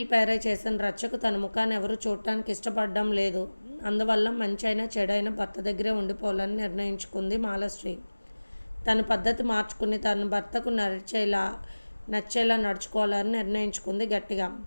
పేరే చేసిన రచ్చకు తన ముఖాన్ని ఎవరు చూడటానికి ఇష్టపడడం లేదు. అందువల్ల మంచి అయినా చెడైనా భర్త దగ్గరే ఉండిపోవాలని నిర్ణయించుకుంది మాలశ్రీ. తన పద్ధతి మార్చుకుని తన భర్తకు నచ్చేలా నడుచుకోవాలని నిర్ణయించుకుంది గట్టిగా.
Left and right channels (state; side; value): inverted; both; correlation -1.00